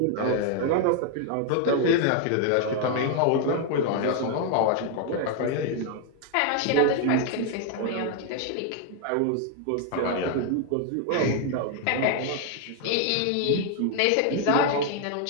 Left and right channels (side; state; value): both; different; correlation 0.00